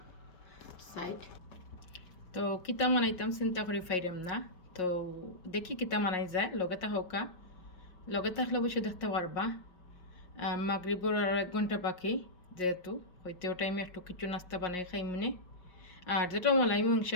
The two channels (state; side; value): late; right; 5.5 ms